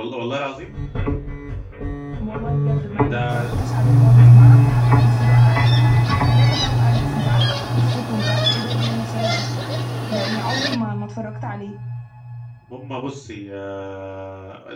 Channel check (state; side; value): identical; both; correlation 1.00